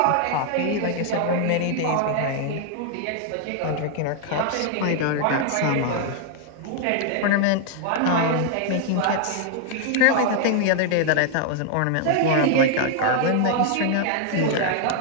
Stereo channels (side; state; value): both; different; correlation 0.00